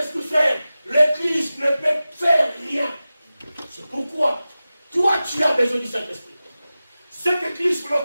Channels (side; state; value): both; inverted; correlation -0.95